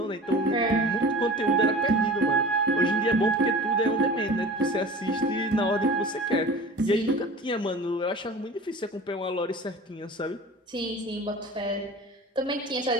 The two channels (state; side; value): normal; both; correlation 0.38